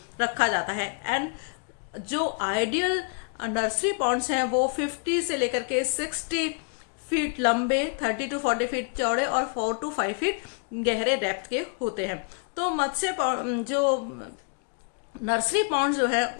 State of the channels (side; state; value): right; quieter; 38.1 dB